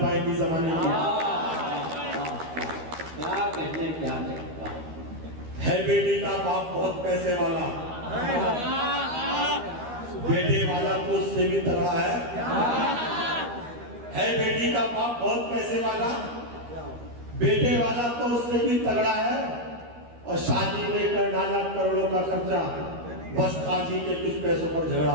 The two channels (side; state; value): left; late; 13 ms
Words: जमाने की। क्या कहने? है बेटी का बाप बहुत पैसे वाला, बेटे वाला तो उससे भी तगड़ा है बेटी का बाप बहुत पैसे वाला, बेटे वाला तो उससे भी तगड़ा है। और शादी में कर डाला करोड़ों का खर्चा, बस काजी के कुछ पैसों पर झगड़ा